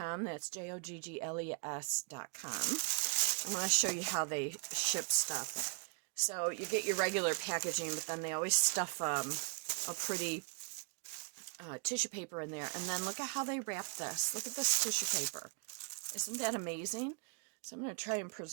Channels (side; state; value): left; quieter; 38.1 dB